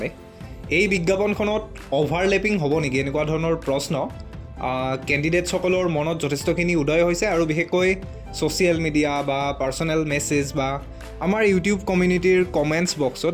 এই বিজ্ঞাপনখনত অভাৰলেপিং হ'ব নেকি এনেকুৱা ধৰণৰ প্ৰশ্ন কেণ্ডিডেটসকলৰ মনত যথেষ্টখিনি উদয় হৈছে আৰু বিশেষকৈ ছ'চিয়েল মিডিয়া বা পাৰ্চনেল মেছেজ বা আমাৰ ইউটিউব কমিউনিটিৰ কমেণ্টছ বক্সত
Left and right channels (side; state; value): both; identical; correlation 1.00